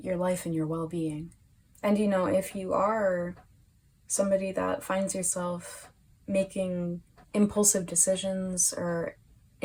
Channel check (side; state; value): both; identical; correlation 1.00